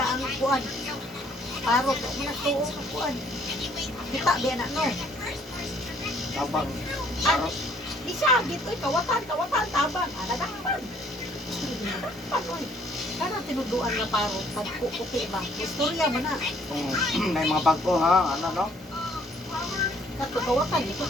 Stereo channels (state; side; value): normal; both; correlation 0.61